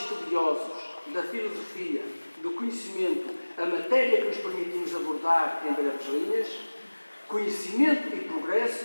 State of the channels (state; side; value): inverted; both; correlation -1.00